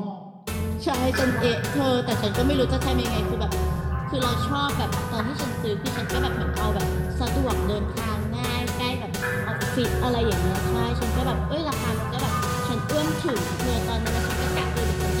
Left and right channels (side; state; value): both; identical; correlation 1.00